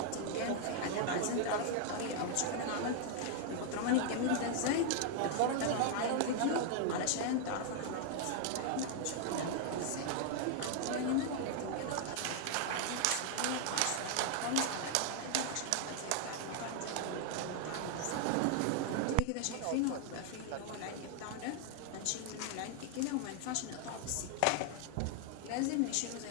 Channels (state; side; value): different; both; correlation 0.00